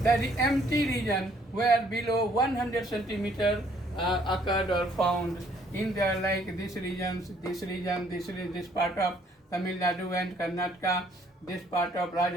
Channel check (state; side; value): normal; both; correlation 0.63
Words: the empty region where below 100 centimeter occurred or found in there, like this region, this part of Tamil Nadu and Karnataka, this part of